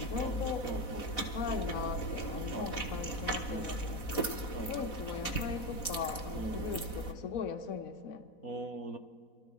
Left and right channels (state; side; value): late; right; 4.1 ms